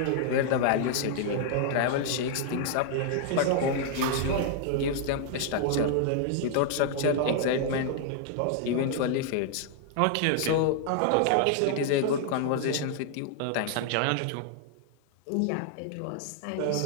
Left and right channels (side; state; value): both; different; correlation 0.00